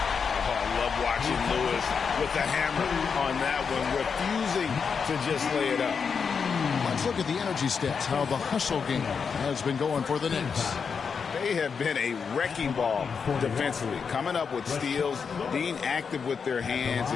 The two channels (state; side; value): quieter; right; 6.0 dB